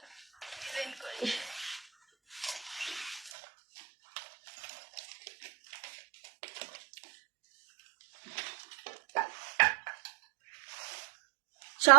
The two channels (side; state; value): left; drops out; at 3.3 s